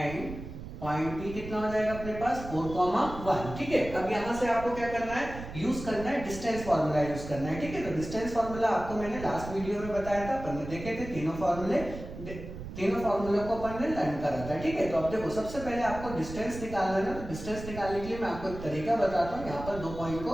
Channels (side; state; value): right; noise; rumble, 11 dB below the sound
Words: पॉइंट बी कितना हो जाएगा अपने पास 4,1। ठीक है, अब यहां से आपको क्या करना है, यूज करना है डिस्टेंस फार्मूला यूज करना है। ठीक है, तो डिस्टेंस फार्मूला आपको मैंने लास्ट वीडियो में बताया था, अपन ने देखे थे तीनों फार्मूलों को अपन ने लर्न करा था। ठीक है, तो अब देखो सबसे पहले आपको डिस्टेंस निकालना है ना। तो डिस्टेंस निकालने के लिए मैं आपको एक तरीका बताता हूँ। यहाँ पर दो पॉइंट